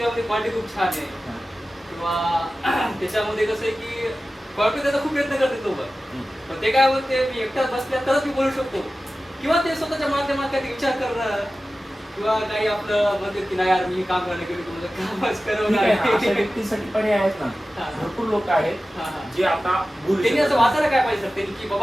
क्वालिटी खूप छान आहे किंवा त्याच्यामध्ये कसं आहे की क्वालिटी त्याचा खूप प्रयत्न करते लोक, पण ते काय होते मी एकटाच बसल्या तरच मी बोलू शकतो किंवा ते स्वतःच्या माध्यमात काही विचार करणं किंवा काही आपलं म्हणते की नाही यार मी काम करायला गेलो तुमचं कामच करवणार. व्यक्तीसाठी पर्याय आहेत ना, भरपूर लोक आहेत जे आता त्यांनी असं वाचायला काय पाहिजे सर, त्यांनी की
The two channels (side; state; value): both; normal; correlation 0.95